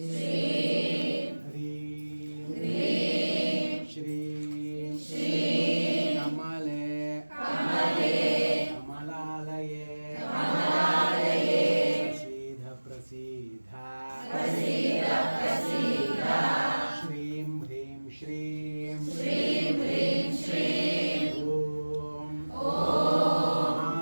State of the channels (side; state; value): both; inverted; correlation -1.00